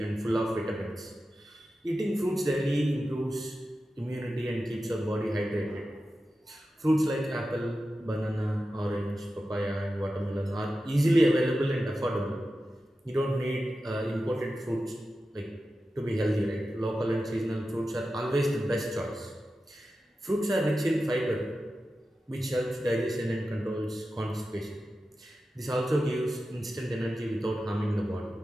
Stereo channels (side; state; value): both; normal; correlation 0.92